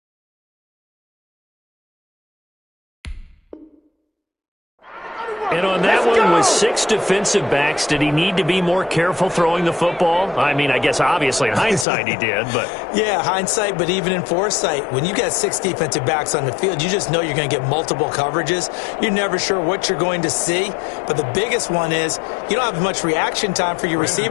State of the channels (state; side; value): drops out; right; at 11.9 s